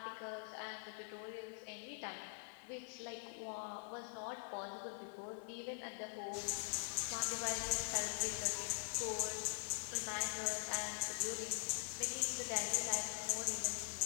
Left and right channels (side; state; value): right; silent; digital silence